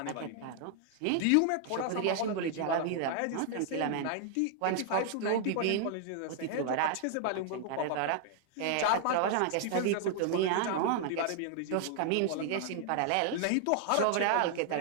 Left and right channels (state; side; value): different; both; correlation 0.00